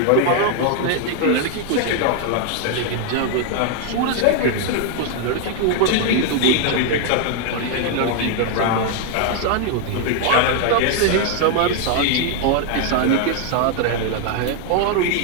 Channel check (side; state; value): both; different; correlation 0.00